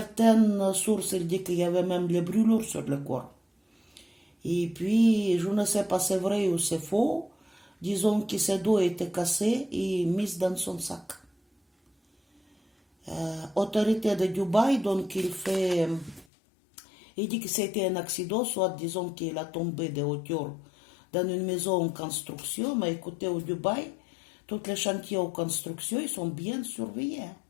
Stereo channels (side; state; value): right; drops out; at 16.2 s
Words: sources disent qu'il y avait même les brûlures sur le corps. Et puis, je ne sais pas si c'est vrai ou c'est faux, disons que ses dos étaient cassés et mis dans son sac. Autorité de Dubaï, donc il dit que c'était un accident, soit disons qu'il a tombé de hauteur dans une maison en construction, mais écoutez, au Dubaï, tous les chantiers en construction, ils sont bien surveillés.